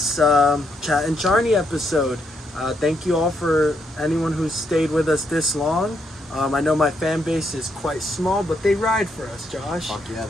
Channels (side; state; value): both; normal; correlation 0.77